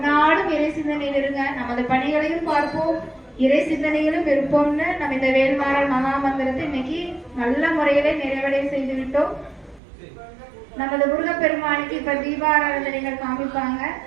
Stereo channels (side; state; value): left; drops out; at 9.8 s